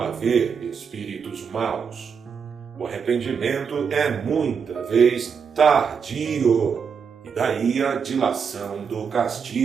haver espíritos maus. O arrependimento é muita vez tardio, e daí a dilação do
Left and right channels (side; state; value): left; quieter; 6.5 dB